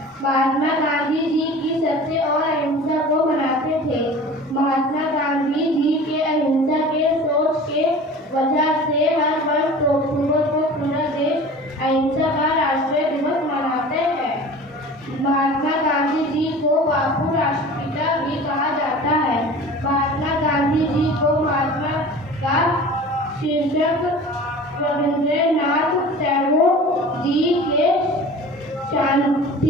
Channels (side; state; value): both; normal; correlation 0.40